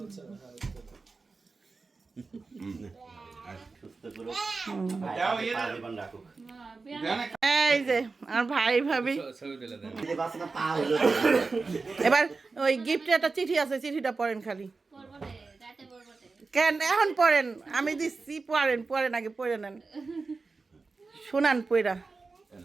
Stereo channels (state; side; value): quieter; left; 4.1 dB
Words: সুস্থ করুক, জীবন রাখুক। এই যে আর ভাই ভাবি এই বাচ্চাটা পা হলো এবার ওই গিফটে একটা চিঠি আছে, চিঠিটা পড়েন খালি। কেন এখন পড়েন, আমি দিচ্ছি, পড়েন পড়েন আগে পড়ে নেন, শোনান পড়া।